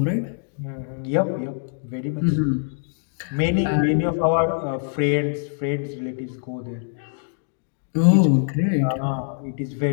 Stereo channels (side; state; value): right; silent; digital silence